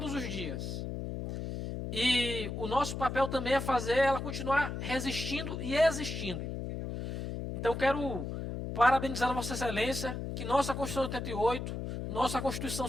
os dias. E o nosso papel também é fazer ela continuar resistindo e existindo. Então, quero parabenizar a Vossa Excelência, que nossa Constituição de 88, nossa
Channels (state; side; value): noise; left; hum, 5 dB below the sound